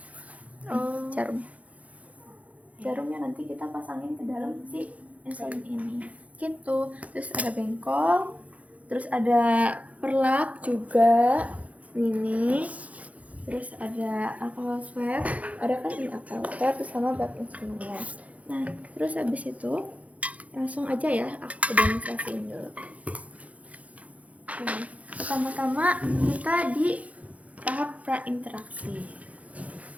Jarumnya nanti kita pasangin ke dalam si insulin ini. Gitu. Terus ada bengkol. Terus ada perlak juga. Ini. Terus ada alcohol swab, ada kan ini alcohol swab sama bab insulinnya. Nah, terus habis itu langsung aja ya aku demonstrasiin dulu. Nah, pertama-tama kita di tahap prainteraksi.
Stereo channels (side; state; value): left; late; 0.068 ms